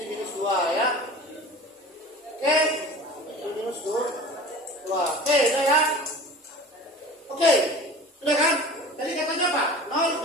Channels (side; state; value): both; normal; correlation 0.39